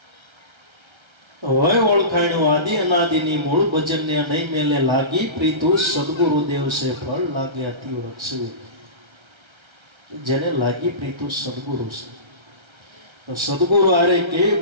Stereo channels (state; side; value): late; left; 1.3 ms